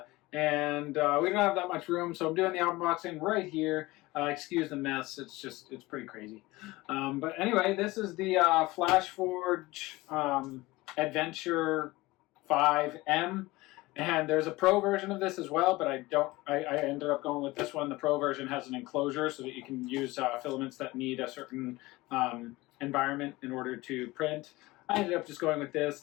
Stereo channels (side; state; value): right; quieter; 20.4 dB